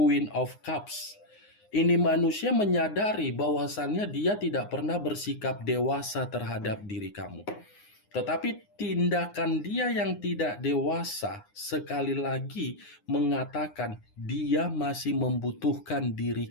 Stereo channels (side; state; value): right; late; 9.7 ms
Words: of Cups. Ini manusia menyadari bahwasannya dia tidak pernah bersikap dewasa terhadap diri kamu. Tetapi tindakan dia yang tidak dewasa sekali lagi mengatakan dia masih membutuhkan diri